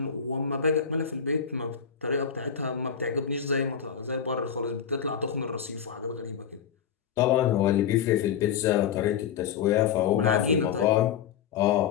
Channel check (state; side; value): quieter; right; 7.8 dB